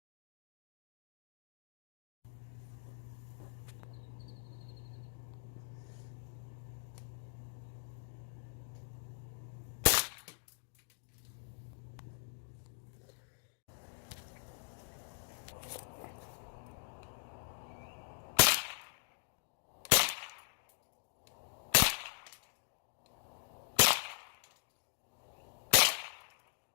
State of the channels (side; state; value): right; silent; digital silence